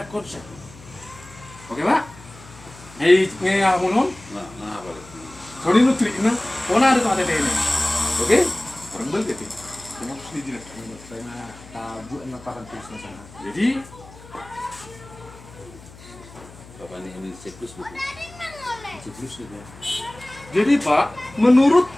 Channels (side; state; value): left; noise; hum, 20 dB below the sound